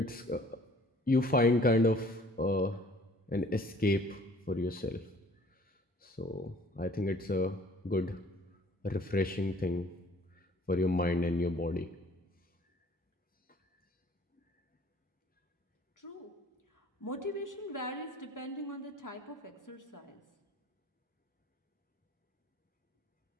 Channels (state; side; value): normal; both; correlation 0.55